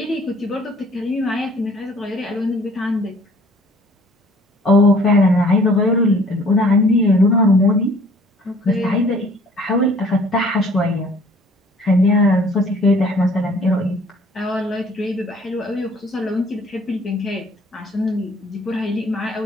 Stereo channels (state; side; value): normal; both; correlation 0.55